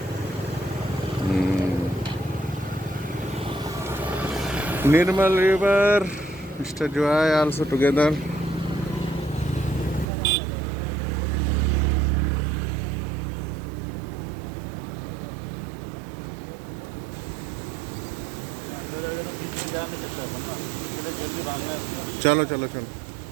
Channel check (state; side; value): drops out; left; at 10.1 s